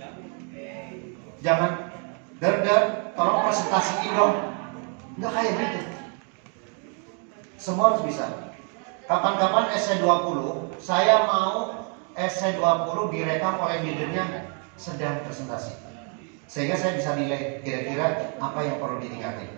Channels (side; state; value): left; quieter; 39.4 dB